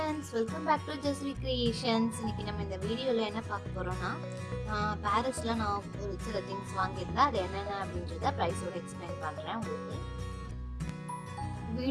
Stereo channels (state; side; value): identical; both; correlation 1.00